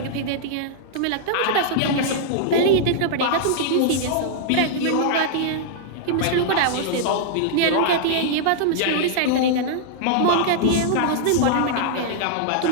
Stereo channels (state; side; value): different; both; correlation -0.01